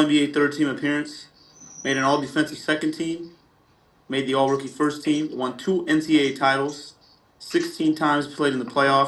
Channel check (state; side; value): identical; both; correlation 1.00